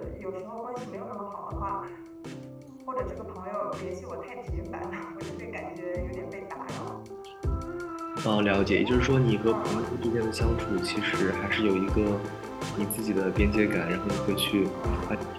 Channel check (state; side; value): identical; both; correlation 1.00